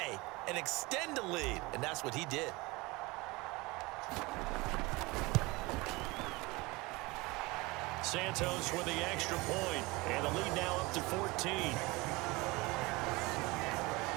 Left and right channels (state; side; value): quieter; left; 23.4 dB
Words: and extend the lead. And that's what he did. Santos with the extra point, and the lead now up to 14.